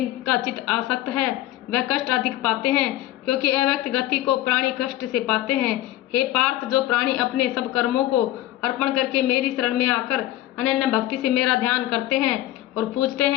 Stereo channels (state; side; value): quieter; right; 14.6 dB